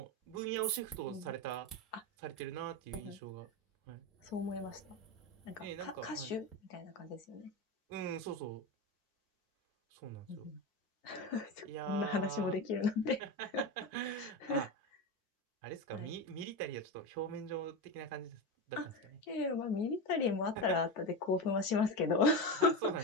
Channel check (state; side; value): normal; both; correlation 0.18